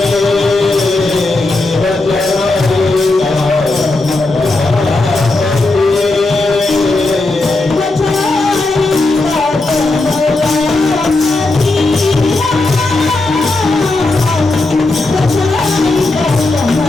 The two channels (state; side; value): quieter; right; 3.1 dB